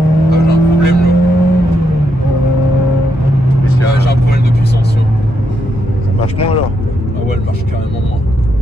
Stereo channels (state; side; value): normal; both; correlation 0.80